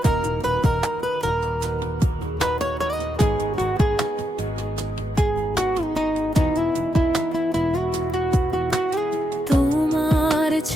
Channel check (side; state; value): both; normal; correlation 0.82